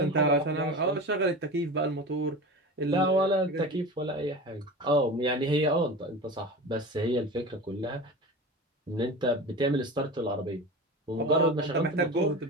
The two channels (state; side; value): normal; both; correlation 0.31